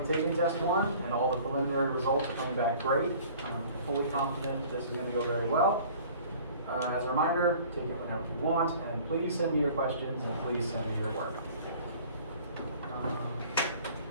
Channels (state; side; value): inverted; both; correlation -0.49